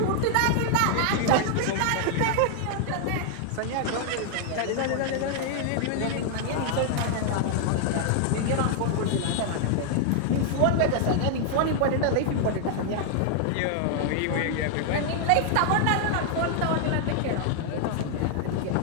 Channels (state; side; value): different; both; correlation 0.00